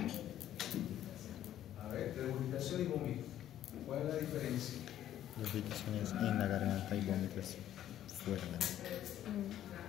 Regurgitación y vómito. ¿Cuál es la diferencia? La irritación es en la garganta y vómito es fuera de la boca.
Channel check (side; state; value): right; quieter; 11.8 dB